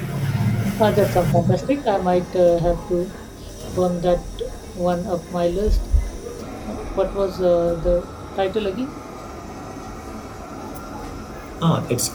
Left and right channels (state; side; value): identical; both; correlation 1.00